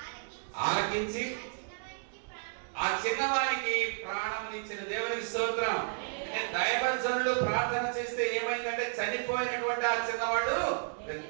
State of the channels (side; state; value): left; silent; 56 dB below the other